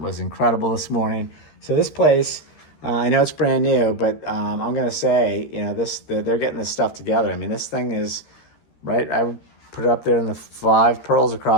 incredible this morning. So this place, I know it's brand new, but I'm going to say, they're getting this stuff together. I mean, this thing is, right, I would put it up there in the 5 pearls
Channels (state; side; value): late; right; 13 ms